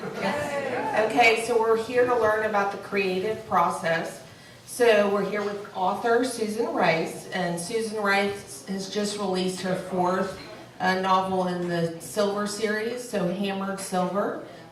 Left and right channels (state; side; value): identical; both; correlation 1.00